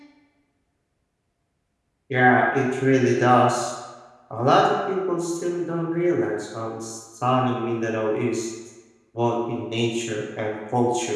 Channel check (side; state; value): both; identical; correlation 1.00